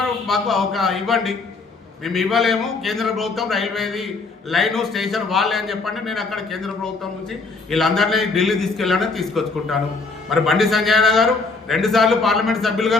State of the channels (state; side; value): quieter; right; 4.0 dB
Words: మాకు ఒక ఇవ్వండి, మేము ఇవ్వలేము, కేంద్ర ప్రభుత్వం రైల్వేది లైను స్టేషన్ వాళ్ళే అని చెప్పండి. నేను అక్కడ కేంద్ర ప్రభుత్వం నుంచి వీళ్ళందరినీ ఢిల్లీ తీసుకెళ్ళాలని తీసుకొచ్చుకుంటాను. మరి బండి సంజయ్ గారు 2 సార్లు పార్లమెంట్ సభ్యులుగా